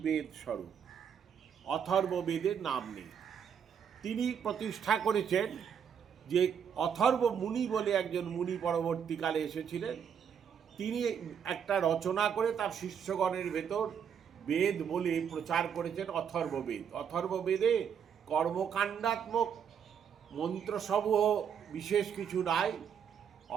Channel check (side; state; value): left; quieter; 7.7 dB